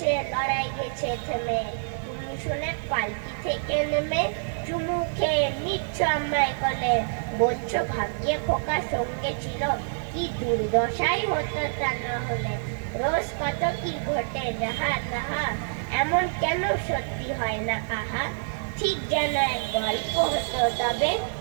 লড়াই গেছে থেমে। তুমি শুনে পালকি থেকে নেমে চুমু খেয়ে নিচ্ছ আমায় কোলে। বলছো ভাগ্যে খোকা সঙ্গে ছিল, কি দুর্দশাই হতো তা না হলে। রোজ কত কি ঘটে যাহা তাহা, এমন কেন সত্যি হয় না আহা। ঠিক যেন এক গল্প হতো তবে,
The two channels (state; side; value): silent; left; digital silence